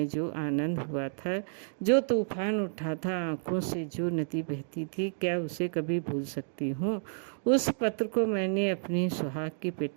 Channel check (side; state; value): left; silent; digital silence